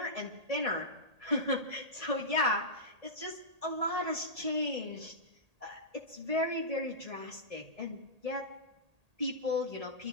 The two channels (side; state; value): left; late; 1.8 ms